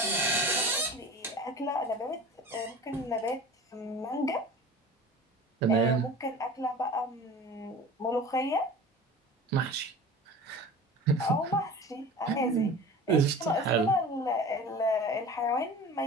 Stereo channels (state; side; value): normal; both; correlation 0.38